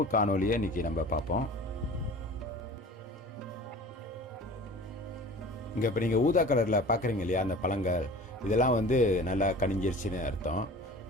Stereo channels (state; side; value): normal; both; correlation 0.41